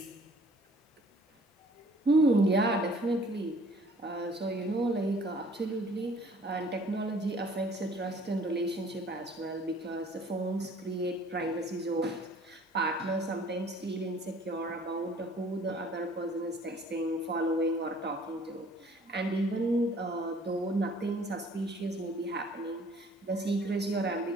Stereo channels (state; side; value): normal; both; correlation 0.55